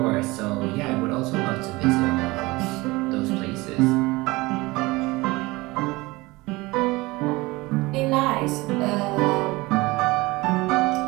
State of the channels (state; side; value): quieter; left; 22.1 dB